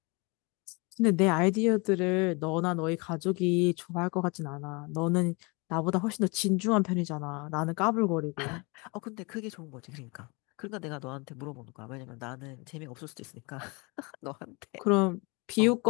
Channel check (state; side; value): quieter; right; 29.1 dB